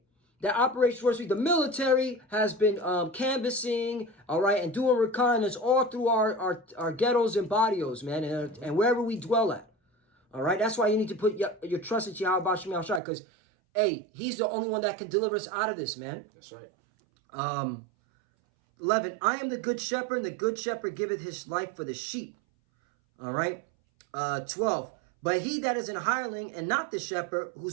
That Operation Warp Speed. The military has been canvassing, all right, and doing reconnaissance all through our ghettos and barrios, man, and wherever we dwell at. All right. That's why you need to put your trust in Yahweh Bashim Yahweh, because hey, he's the only one that can deliver us out of this, man. That's right. 11, I am the good shepherd, and the good shepherd giveth his life for the sheep. All right. 12, but he that is an hireling and not the shepherd,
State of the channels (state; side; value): drops out; left; at 13.0 s